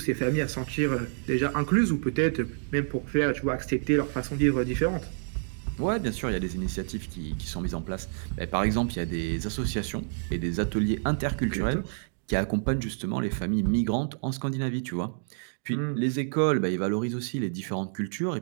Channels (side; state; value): left; silent; digital silence